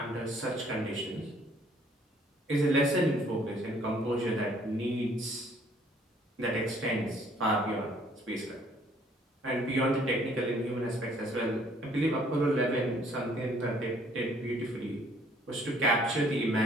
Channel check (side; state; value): both; normal; correlation 0.61